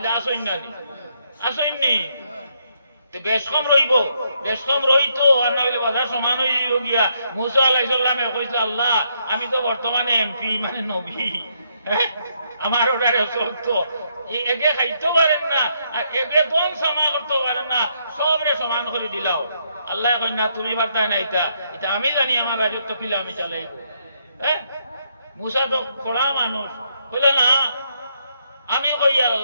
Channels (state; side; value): inverted; both; correlation -0.75